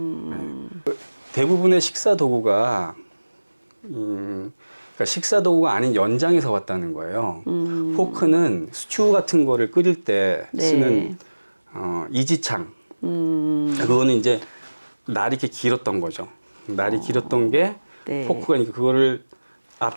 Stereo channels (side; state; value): both; inverted; correlation -1.00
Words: 대부분의 식사 도구가 그러니까 식사 도구가 아닌 연장에서 왔다는 거예요. 포크는 스튜 같은 거를 끓일 때 네. 쓰는 이지창. 그거는 이제 날이 이렇게 길었던 거죠. 날이 길었던 게 네. 포크가 그거를